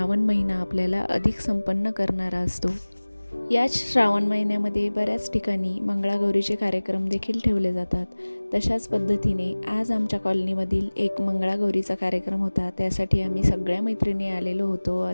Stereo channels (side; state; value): both; inverted; correlation -1.00